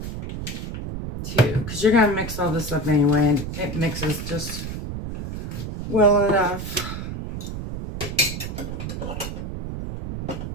2, because you're going to mix all this up anyway, and it mixes just well enough.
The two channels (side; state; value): right; noise; rumble, 6 dB below the sound